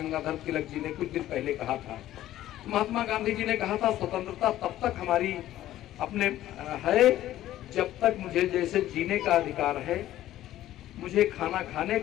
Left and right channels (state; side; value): quieter; right; 13.7 dB